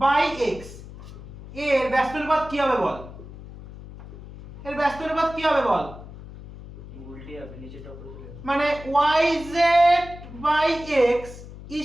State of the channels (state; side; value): noise; left; hum, 15 dB below the sound